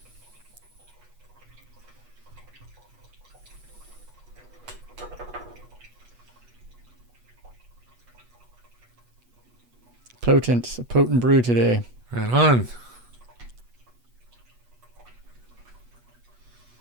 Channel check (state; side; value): late; left; 8.2 ms